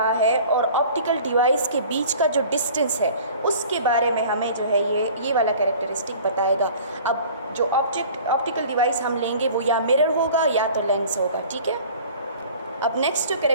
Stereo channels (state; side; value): inverted; both; correlation -0.46